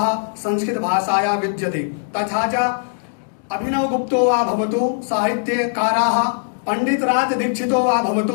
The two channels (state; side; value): silent; right; digital silence